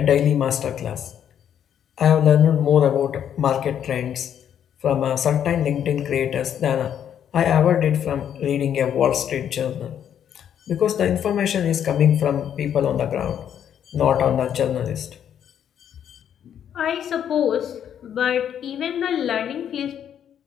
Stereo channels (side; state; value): right; quieter; 9.3 dB